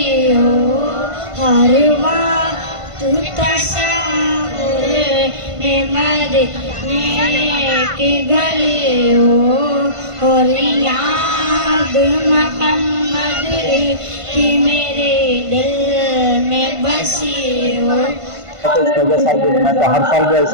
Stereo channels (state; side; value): late; left; 1.5 ms